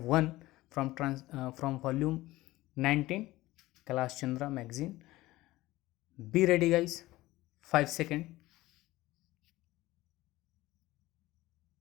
from volume 19, Kailash Chandra magazine. Be ready guys. 5 seconds.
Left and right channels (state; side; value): quieter; right; 17.9 dB